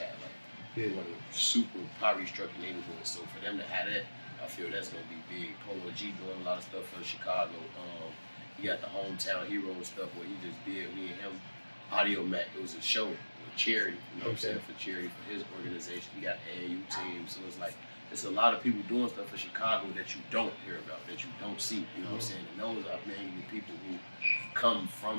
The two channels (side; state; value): both; inverted; correlation -1.00